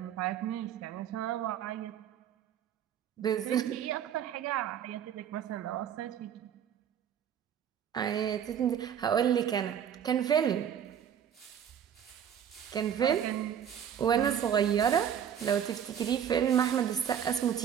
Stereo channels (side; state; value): left; quieter; 9.0 dB